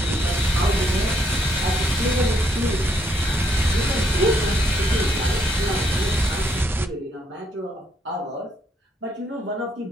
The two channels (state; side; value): normal; both; correlation 0.73